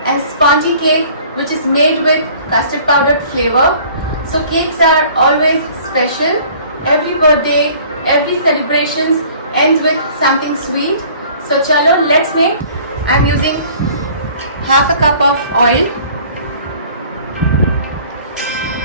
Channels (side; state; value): both; inverted; correlation -0.51